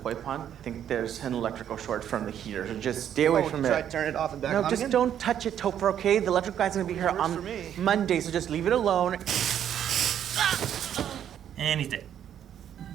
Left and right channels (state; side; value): quieter; left; 9.8 dB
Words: pond. I think there's an electrical short from the heater. So just stay away from it. Try to turn it off and back on No, just again? don't touch it, Topher, okay? The electrical guy's gonna be here on Monday, so just leave it alone. And he's dead.